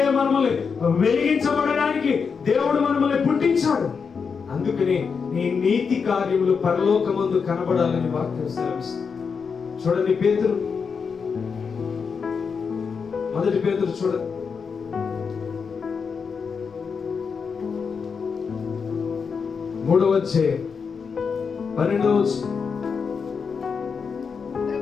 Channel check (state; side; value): quieter; right; 5.8 dB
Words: మనల్ని వెలిగించబడడానికి దేవుడు మనల్ని పుట్టించాడు. అందుకనే నీ నీతి కార్యములు పరలోకమందు కనబడాలని వాక్యం సెలవిస్తుంది. చూడండి పేతురు, మొదటి పేతురు చూడండి, 3వ అధ్యాయం 12వ వచనం.